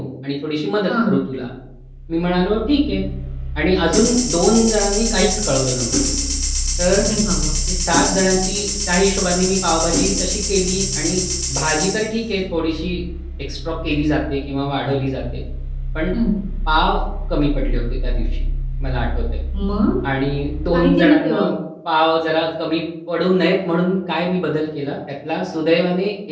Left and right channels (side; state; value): both; identical; correlation 1.00